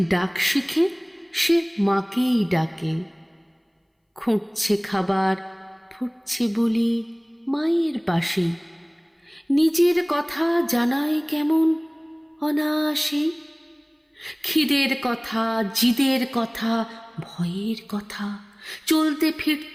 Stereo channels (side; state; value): both; identical; correlation 1.00